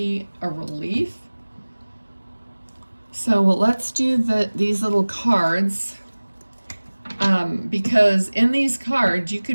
a relief. So let's do these little cards, because in these cards you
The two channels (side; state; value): both; inverted; correlation -1.00